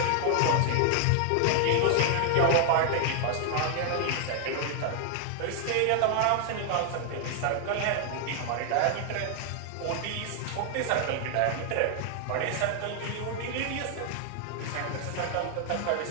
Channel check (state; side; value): different; both; correlation 0.00